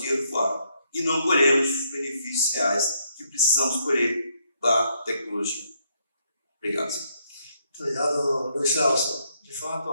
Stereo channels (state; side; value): inverted; both; correlation -0.74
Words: dinheiro fora e não colhemos os benefícios reais que precisamos colher da tecnologia. Obrigado. Obrigado, Luiz Celso. De fato,